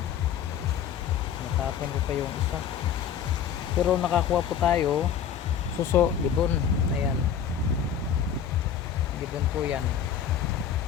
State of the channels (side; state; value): right; quieter; 8.4 dB